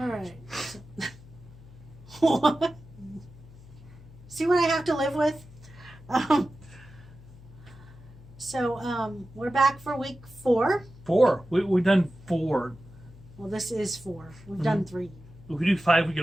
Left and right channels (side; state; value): left; noise; hum, 20 dB below the sound